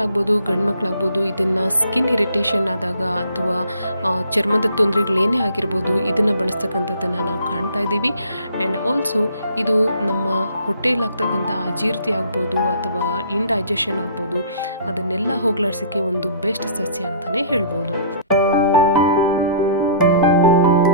ಗಂಡು ಮಕ್ಕಳಾಗ್ಬೋದು ಇದನ್ನು ಸ್ಕಿನ್ ಇರಿಟೇಷನ್ ಆದಾಗ ಅಥವಾ ಚರ್ಮದ ತೊಂದರೆಗಳೇನೇ ಆಗಿರ್ಬೋದು ಇದನ್ನು ಬಳಸ್ತಕ್ಕಂಥದ್ದನ್ನು ನಾವು ಕಾಣ್ತಾ ಇದ್ದೀವಿ. ಆ್ಯಂಡ್ ಆಲ್ಸೋ ಇದು ನಮ್ಮ ಹೊಟ್ಟೆಯಲ್ಲಾಗ್ತಕ್ಕಂಥ ಅಜೀರ್ತಿ ಆಗ್ಬೋದು ಅಥವಾ ಇಂಡೈಜೆಷನ್ ಆಗ್ಬೋದು, ಅದನ್ನೆಲ್ಲ ಹೋಗ್ಲಾಡ್ಸೋಕ್ಕೆ ಒಂದು ಬೆಸ್ಟ್ ಸಸ್ಯ ಅಂತಲೇ ಹೇಳ್ಬೋದು.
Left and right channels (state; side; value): inverted; both; correlation -0.53